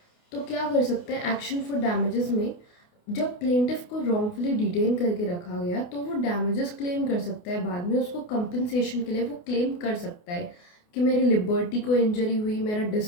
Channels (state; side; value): late; right; 28 ms